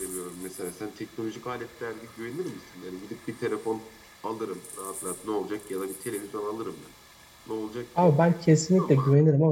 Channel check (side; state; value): both; identical; correlation 1.00